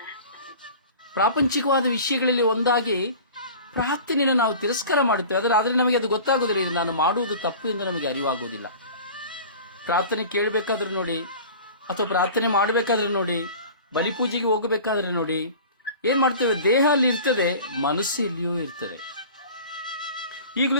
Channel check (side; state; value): both; inverted; correlation -0.40